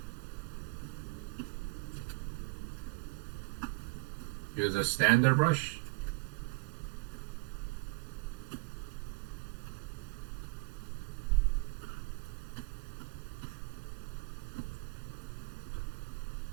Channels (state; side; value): quieter; left; 28.2 dB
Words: Use a standard brush.